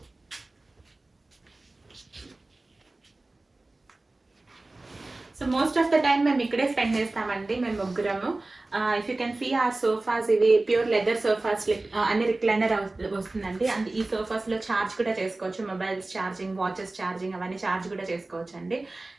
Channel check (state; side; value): quieter; left; 3.0 dB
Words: So most of the time మేము ఇక్కడే స్పెండ్ చేస్తామండి, మేము ముగ్గురము. ఇఫ్ యూ కెన్ సీ ఆ సోఫాస్, ఇవి ప్యూర్ లెదర్ సోఫాస్, అన్ని రిక్లైనర్ వస్తుందండి. అండ్ ఈ సోఫాస్లో ఛార్జ్ కూడా చేసుకోవచ్చు, మొబైల్స్ ఛార్జింగ్, వాచెస్ ఛార్జింగ్ అవన్నీ ఛార్జ్ కూడా చేసుకోవచ్చు అండి.